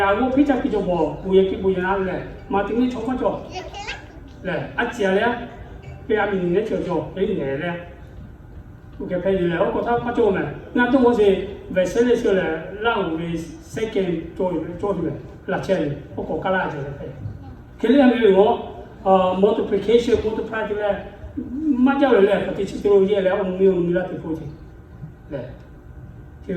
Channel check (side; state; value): both; identical; correlation 1.00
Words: 我非常比较薄，不一样嘞，嘛听你错不着，嘞，接嘞，给阿明年就给年嘞，我给陪你嘞，我觉得不做嘛，那都我是为生的时候嘞，让为second 做什么，6,000，我国家啦就来陪，佢呢係我multiplication multiply 咧，乜嘢咧，佢哋知道嘢咧，我冇啦，啲鋪子，嘞。因